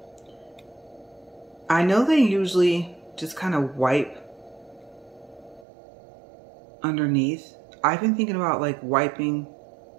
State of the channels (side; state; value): left; drops out; at 5.7 s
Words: I know they usually just kind of wipe underneath. I've been thinking about like wiping